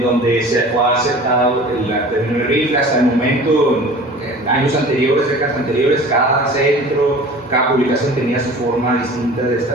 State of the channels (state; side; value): normal; both; correlation 0.42